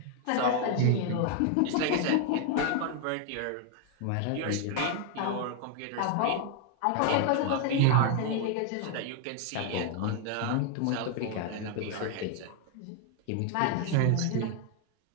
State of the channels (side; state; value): both; different; correlation 0.00